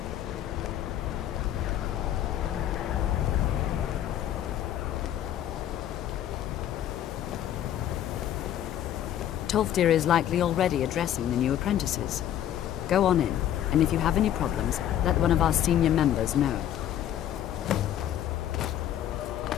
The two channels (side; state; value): right; quieter; 11.2 dB